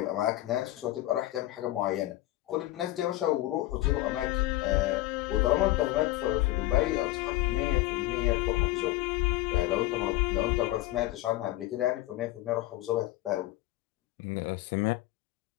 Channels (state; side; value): quieter; right; 16.7 dB